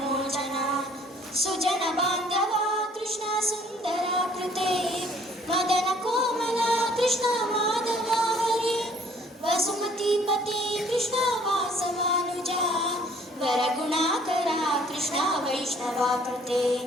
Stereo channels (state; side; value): normal; both; correlation 0.58